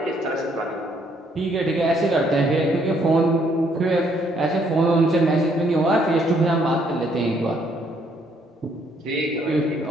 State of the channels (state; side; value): normal; both; correlation 0.68